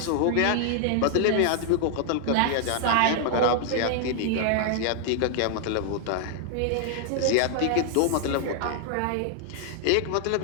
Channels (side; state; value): both; different; correlation 0.00